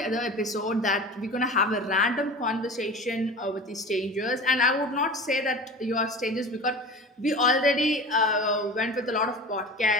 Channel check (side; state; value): both; normal; correlation 0.35